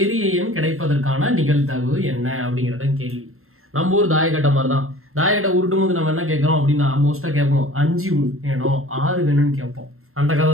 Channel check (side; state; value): left; late; 0.62 ms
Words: எண் கிடைப்பதற்கான நிகழ்தகவு என்ன அப்படிங்கிறத கேள்வி. நம்ம ஊர் தாயக்கட்டை மாதிரி தான். தாயக்கட்டை உருட்டும் போது நம்ம என்ன கேட்கறோம் அப்படின்னா, மோஸ்டா கேட்போம் 5 வேணும் 6 வேணும்னு கேட்போம். அந்த கதை